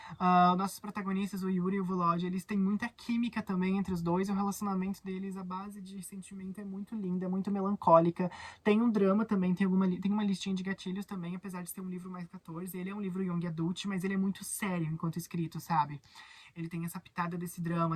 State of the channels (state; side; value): identical; both; correlation 1.00